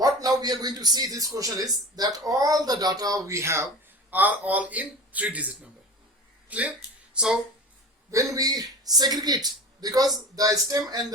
now we are going to see this question is that all the data we have are all in 3-digit number. Clear? So when we segregate, because the stem and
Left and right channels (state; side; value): normal; both; correlation 0.35